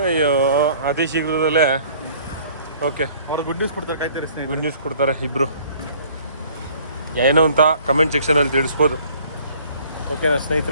ಅಯ್ಯೋ, ಅತಿ ಶೀಘ್ರದಲ್ಲೇ. ಓಕೆ, ಅವ್ರು ಗುಡ್ ನ್ಯೂಸ್ ಕೊಡ್ತಾರೆ, ಕಾಯ್ತಾರೆ ಸ್ನೇಹಿತರೆ. ಗುಡ್ ನ್ಯೂಸ್ ಕೊಡ್ತಾರೆ ಇಬ್ಬರು. ಏನೋ ಅಂತ ಕಮೆಂಟ್ ಸೆಕ್ಷನಲ್ಲಿ ತಿಳಿಸ್ಬೋದು. ಓಕೆನಾ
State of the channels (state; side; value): inverted; both; correlation -0.54